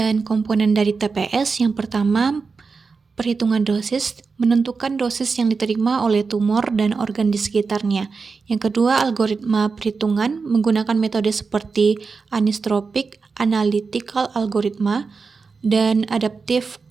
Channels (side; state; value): left; quieter; 4.7 dB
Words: komponen dari TPS, yang pertama, perhitungan dosis, menentukan dosis yang diterima oleh tumor dan organ di sekitarnya. Yang kedua, algoritma perhitungan menggunakan metode seperti anisotropic, analytical algoritma, dan adaptive